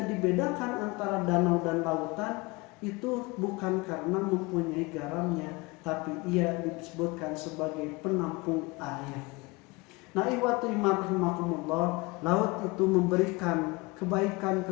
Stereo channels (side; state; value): right; quieter; 24.8 dB